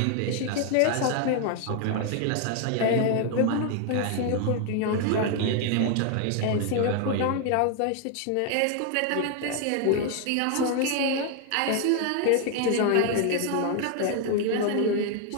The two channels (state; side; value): different; both; correlation 0.00